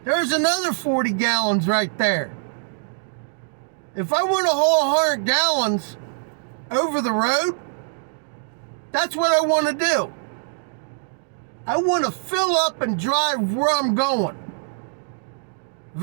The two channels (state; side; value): silent; left; digital silence